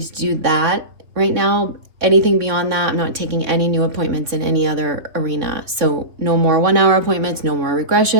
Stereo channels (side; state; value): left; late; 3.5 ms